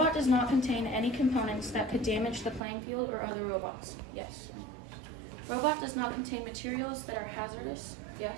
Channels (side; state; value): left; drops out; at 2.6 s